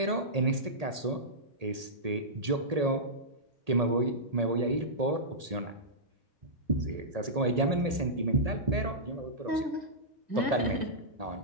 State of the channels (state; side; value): late; left; 1.8 ms